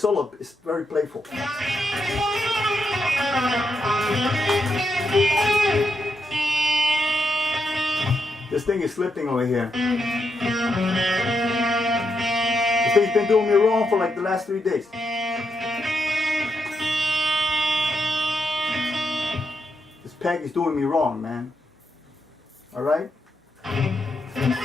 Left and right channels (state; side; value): normal; both; correlation 0.82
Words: is very playful. This thing is slipping over here. This thing's been doing me wrong for like the last 3 days. This peg is doing me wrong, man. Alright?